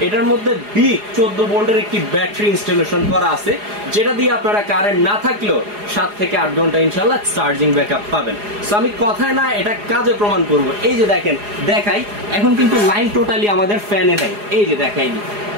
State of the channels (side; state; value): left; late; 4.8 ms